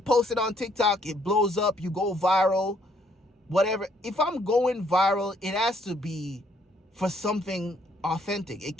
post it on TikTok, it blows up, you go viral, whatever. If I'm going viral, it has to be for something authentic. It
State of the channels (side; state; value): both; normal; correlation 0.67